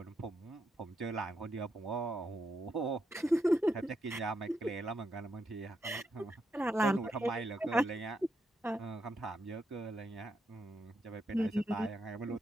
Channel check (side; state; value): both; normal; correlation 0.81